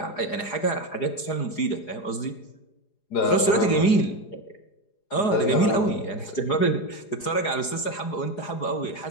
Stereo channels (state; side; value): late; right; 4.8 ms